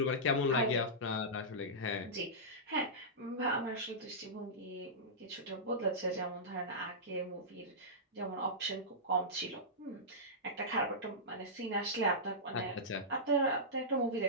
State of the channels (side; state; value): both; normal; correlation -0.15